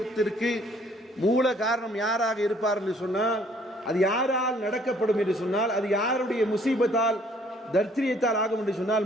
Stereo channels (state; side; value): normal; both; correlation 0.61